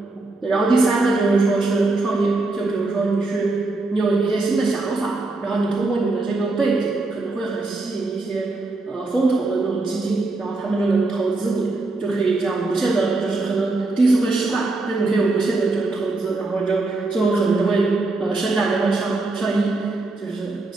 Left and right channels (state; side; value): quieter; left; 3.2 dB